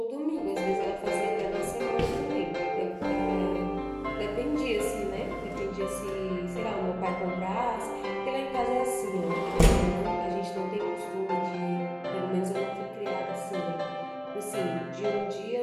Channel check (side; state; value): both; identical; correlation 1.00